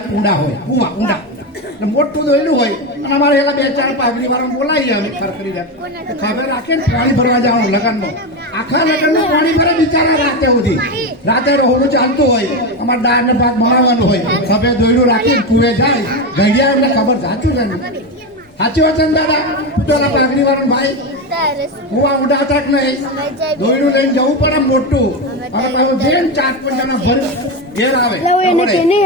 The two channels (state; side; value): normal; both; correlation 0.14